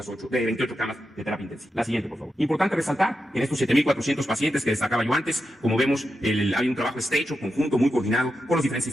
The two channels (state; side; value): normal; both; correlation 0.88